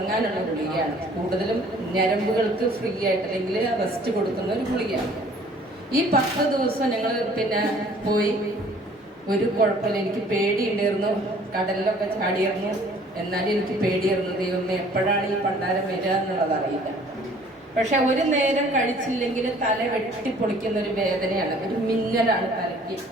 ഗുളികയാണ്. കൂടുതലും ഞരമ്പുകൾക്ക് ഫ്രീ ആയിട്ട് അല്ലെങ്കിൽ റെസ്റ്റ് കൊടുക്കുന്ന ഒരു ഗുളികയാണ്. ഈ 10 ദിവസം ഞങ്ങൾ പിന്നെ പോയി. ഒരു കുഴപ്പമില്ല. എനിക്ക് പേടിയുണ്ടായിരുന്നു. കടലിലൊക്കെ ചാടിയിരുന്നു. എന്നാലും എനിക്ക് പേടിയായിരുന്നു. ദൈവമേ, എപ്പോഴാണ് ഈ പണ്ടാരം വരിക എന്നുള്ളത് അറിയില്ല. പക്ഷെ ഒരു നേരം കഴിച്ചില്ലെങ്കിൽ തല വെട്ടിപ്പൊളിക്കുന്ന ഒരു വേദനയാണ്, ഒരു മിന്നലാണ് തലയ്ക്ക്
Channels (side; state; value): both; normal; correlation 0.54